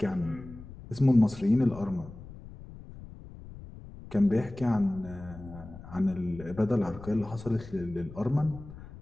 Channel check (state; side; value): noise; left; rumble, 16 dB below the sound